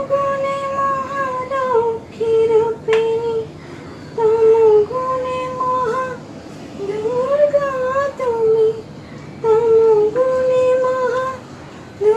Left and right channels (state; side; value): identical; both; correlation 1.00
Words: মহালক্ষ্মী রূপিণী তমগুণে মহা দুর্গা তুমি তমগুণে মহা